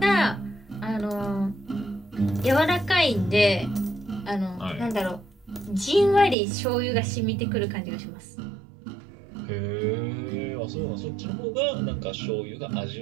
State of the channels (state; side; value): drops out; left; at 6.4 s